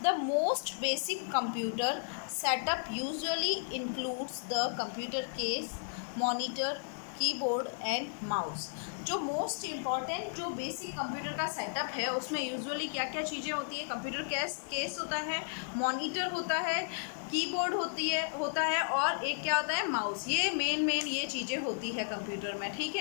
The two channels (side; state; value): right; silent; digital silence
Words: The most basic computer setup usually includes the computer case, monitor, keyboard and mouse. जो मोस्ट इम्पॉर्टेंट जो बेसिक कंप्यूटर का सेटअप है उसमें यूजुअली क्या क्या चीज़ें होती है. कंप्यूटर केस होता है, मॉनिटर होता है, कीबोर्ड होता है और एक क्या होता है, माउस. ये मेन ये चीज़ें होती है कंप्यूटर में. ठीक